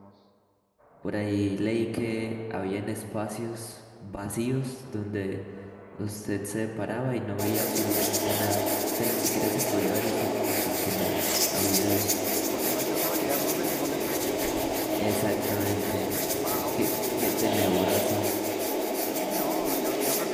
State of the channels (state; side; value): identical; both; correlation 1.00